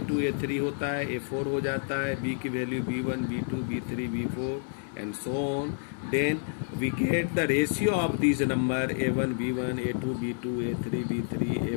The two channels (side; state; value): right; silent; digital silence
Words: A3 होता है, A4 हो जाता है, बी की value B1 B2 B3 B4 and so on, then we get the ratio of these number A1 B1 A2 B2 A3 B3